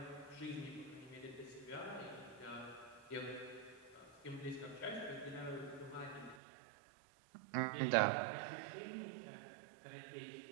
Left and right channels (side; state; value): left; drops out; at 6.4 s